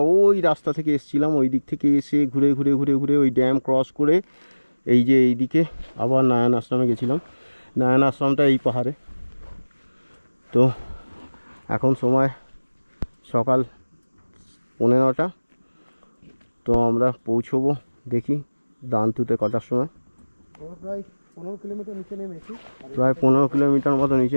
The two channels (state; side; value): inverted; both; correlation -1.00